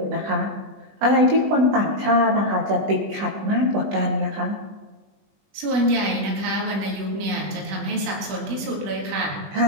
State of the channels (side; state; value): left; late; 20 ms